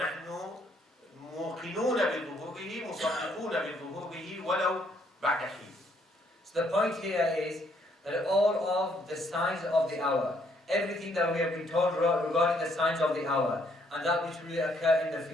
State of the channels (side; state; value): both; normal; correlation 0.69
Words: موقنون بظهوره، مصدقون بظهوره ولو بعد حين. So the point here is that all of the signs of the hour, everything that we have been told regarding the signs of the hour, and that which will occur in the